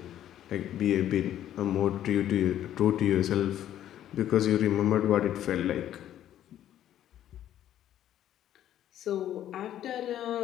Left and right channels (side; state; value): right; quieter; 11.6 dB